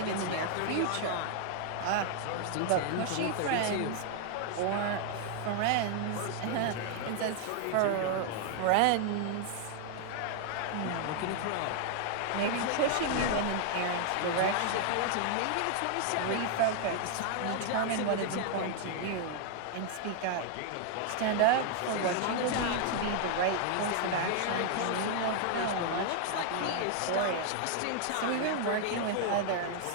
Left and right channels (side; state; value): both; different; correlation 0.00